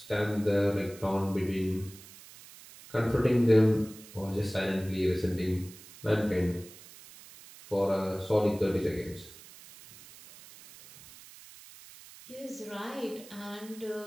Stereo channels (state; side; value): noise; right; hiss, 19 dB below the sound